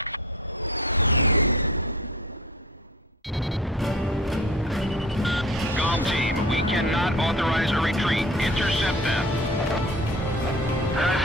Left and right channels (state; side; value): normal; both; correlation 0.39